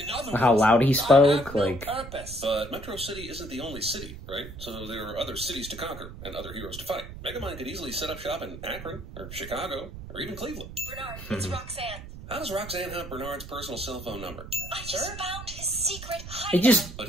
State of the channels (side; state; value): right; noise; rumble, 12 dB below the sound